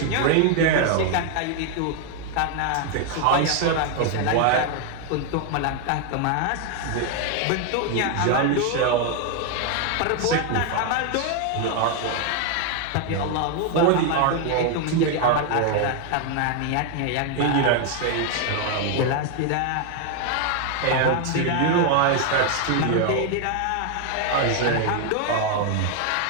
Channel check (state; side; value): different; both; correlation 0.00